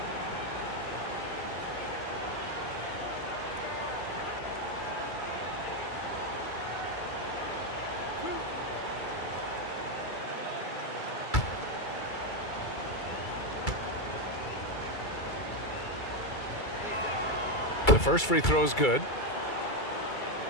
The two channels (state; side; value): late; right; 2.3 ms